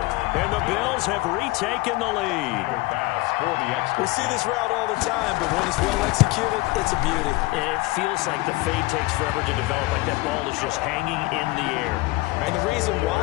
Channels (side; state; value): right; quieter; 21.9 dB